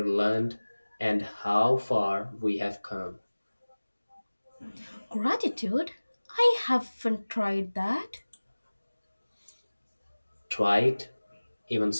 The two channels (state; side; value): inverted; both; correlation -1.00